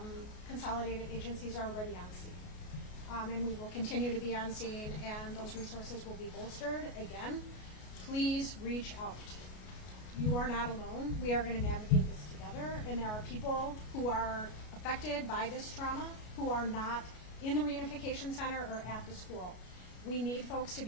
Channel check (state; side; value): late; right; 33 ms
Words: consolidated agencies, are already on scene. And we will continue to be on scene, and those resources will be bolstered. Again, please reach out. You are not alone. We are going to navigate this together, and there are people who are affected by this trauma who are not in the reunification center or at the school. We need folks to